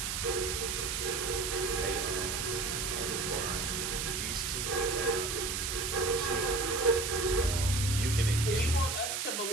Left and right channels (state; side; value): noise; right; hiss, 1 dB below the sound